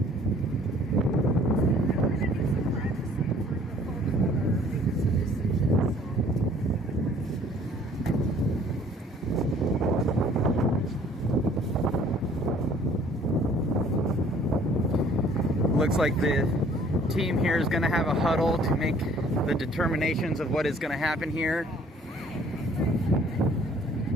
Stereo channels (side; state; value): both; normal; correlation 0.56